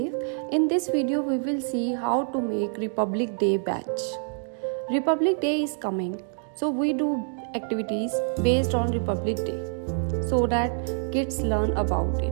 In this video we will see how to make Republic Day badge. Republic Day is coming, so we do activities based on Republic Day so that kids learn about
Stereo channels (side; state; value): left; silent; 61 dB below the other